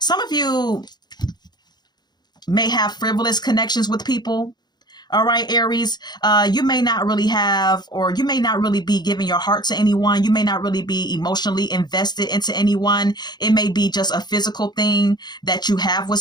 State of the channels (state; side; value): late; right; 0.20 ms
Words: of you may have frivolous connections with people. All right, Aries, you may not really have, or you may not really be giving your heart to anyone. You may not really be emotionally invested into anyone. It may be just a physical thing that you have with